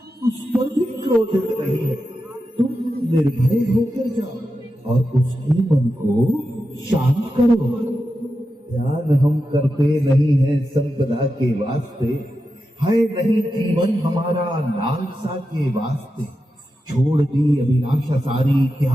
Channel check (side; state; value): both; normal; correlation 0.90